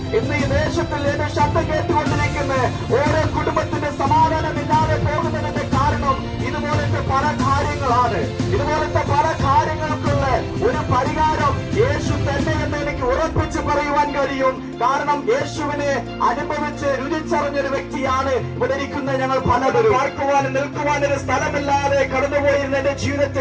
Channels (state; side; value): identical; both; correlation 1.00